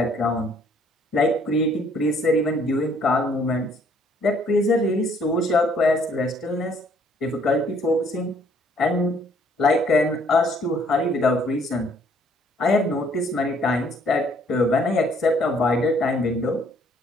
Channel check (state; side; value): normal; both; correlation 0.63